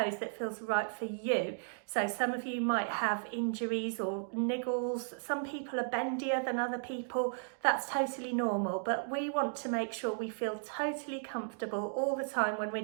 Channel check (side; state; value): left; silent; digital silence